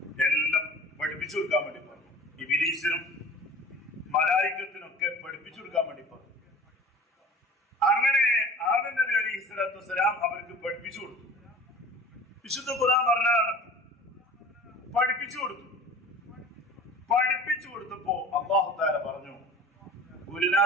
എല്ലാം പഠിപ്പിച്ചു കൊടുക്കാൻ വേണ്ടി പറഞ്ഞു. ഇബ്ലീസിനും മലായികത്തിനൊക്കെ പഠിപ്പിച്ചു കൊടുക്കാൻ വേണ്ടി പറഞ്ഞു. അങ്ങനെ ആദം നബി അലൈഹിസ്സലാത്തു വസ്സലാം അവർക്ക് പഠിപ്പിച്ചു കൊടുത്തു. വിശുദ്ധ ഖുർആൻ പറഞ്ഞതാണ്, പഠിപ്പിച്ചു കൊടുത്തു. പഠിപ്പിച്ചു കൊടുത്തപ്പോ അല്ലാഹു തആല പറഞ്ഞു,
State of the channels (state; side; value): normal; both; correlation 0.42